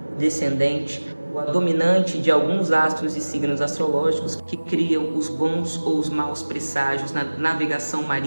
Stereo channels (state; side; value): inverted; both; correlation -1.00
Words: o descendente, ou a dominante de alguns astros e signos astrológicos que criam os bons ou os maus presságios na navegação